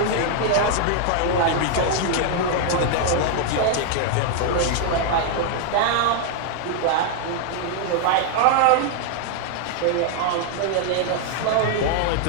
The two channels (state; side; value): different; both; correlation 0.00